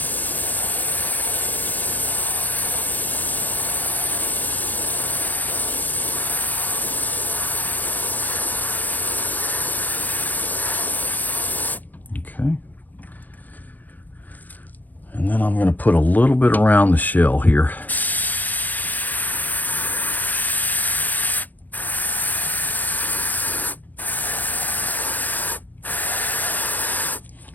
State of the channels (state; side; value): late; right; 0.083 ms